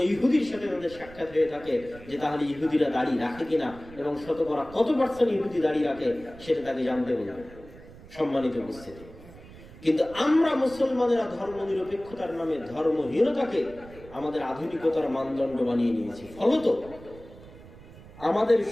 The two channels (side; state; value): right; noise; rumble, 19 dB below the sound